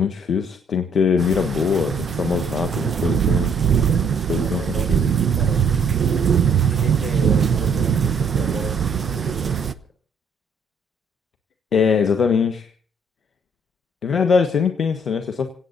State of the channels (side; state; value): both; normal; correlation 0.64